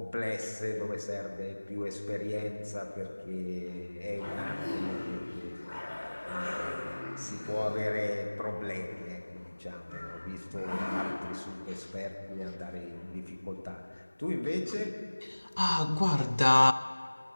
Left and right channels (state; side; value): inverted; both; correlation -1.00